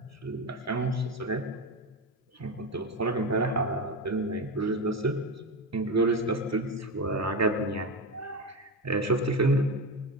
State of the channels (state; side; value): normal; both; correlation 0.18